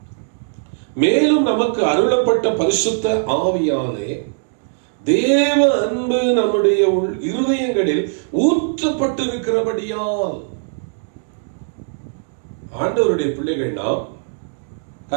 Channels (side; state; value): left; silent; digital silence